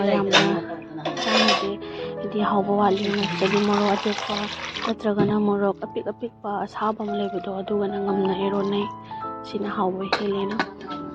yamna chanade idi hawba wali jadi morok atekpa natragana morok apik apikpa asaba ma lebado aduga na ngamna ironai sina hawba helena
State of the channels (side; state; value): both; identical; correlation 1.00